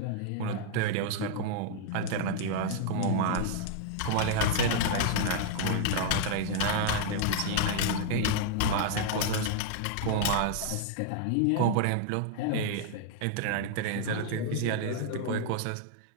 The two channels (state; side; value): different; both; correlation -0.01